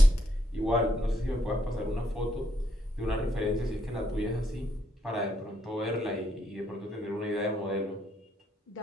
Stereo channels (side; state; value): both; normal; correlation 0.75